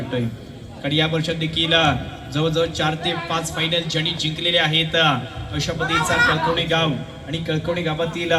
कारण या वर्षात देखील जवळजवळ 4 ते 5 फायनल ज्यांनी जिंकलेले आहेत अशा पद्धतीचा कळकवणे गाव आणि कळकवणे गावातील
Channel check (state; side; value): identical; both; correlation 1.00